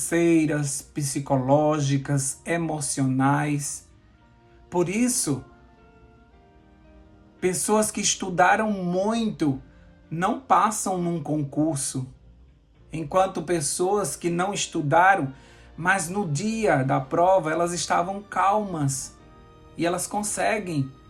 psicológicas, emocionais. Por isso, pessoas que estudaram muito não passam num concurso, enquanto pessoas que não estudaram, mas no dia da prova elas estavam calmas e elas conseguem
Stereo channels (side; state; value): both; identical; correlation 1.00